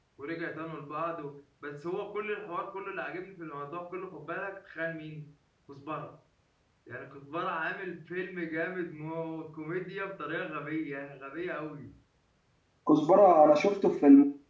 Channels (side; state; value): both; identical; correlation 1.00